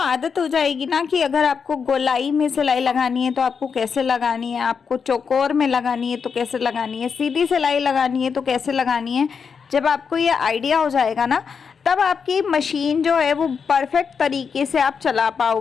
हो जाएगी ना कि अगर आपको गोलाई में सिलाई लगानी है तो आपको कैसे लगानी है, आपको चौकोर में लगानी है तो कैसे लगानी है, सीधी सिलाई लगानी है तो कैसे लगानी है, जब आपको ये आइडिया हो जाएगा ना, तब आपकी मशीन जो है वो परफेक्ट तरीके से आप चला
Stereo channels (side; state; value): right; quieter; 6.1 dB